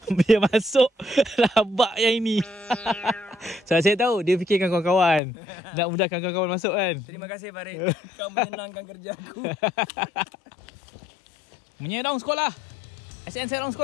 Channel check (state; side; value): drops out; right; at 5.2 s